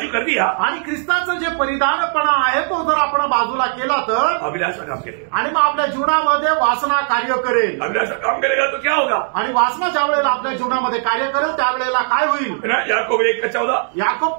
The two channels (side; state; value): left; silent; digital silence